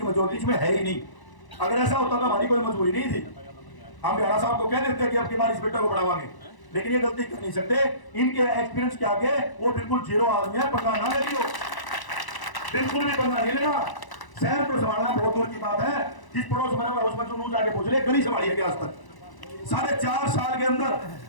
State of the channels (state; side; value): late; right; 1.0 ms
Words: मेजोरिटी इसमें है ही नहीं। अगर ऐसा होता तो हमारी कोई मजबूरी नहीं थी। हम भ्याणा साहब को कह देते कि अब की बार इस बेटा को बढ़ावांगे, लेकिन ये गलती कर नहीं सकते। इनके एक्सपीरियंस के आगे वो बिल्कुल जीरो आदमी है। पंगा ना ले लियो, बिल्कुल भी पंगा नहीं लेना। शहर को संभालना बहुत दूर की बात है। जिस पड़ोस में उसमें जो जाके पूछ ले, गली संभाली है क्या आज तक? 4.5 साल के अंदर